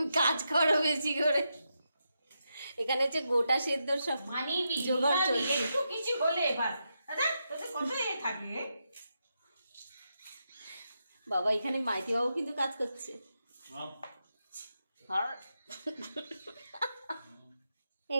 কাজ করো বেশি করে। এখানে হচ্ছে গোটা সেদ্ধ সব জোগাড় চলছে। কিছু বলে এবার বাবা, এখানে মাইতি বাবু কিন্তু কাজ করছে।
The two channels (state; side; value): inverted; both; correlation -0.85